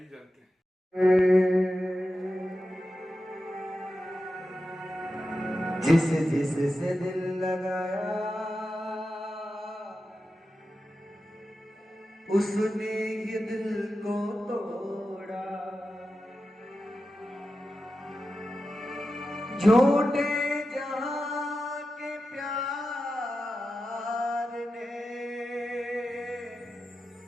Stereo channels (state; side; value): normal; both; correlation 0.91